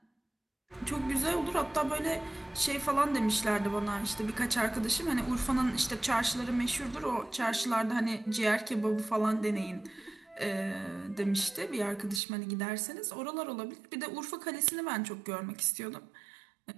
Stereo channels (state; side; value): drops out; left; at 12.2 s